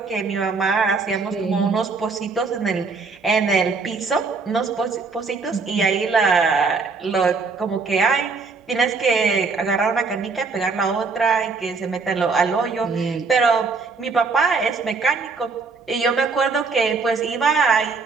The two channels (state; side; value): quieter; left; 4.5 dB